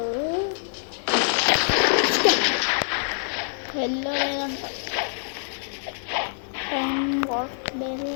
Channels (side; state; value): right; silent; digital silence